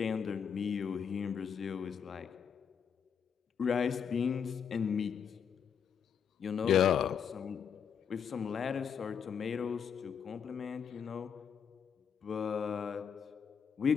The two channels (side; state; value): right; quieter; 7.4 dB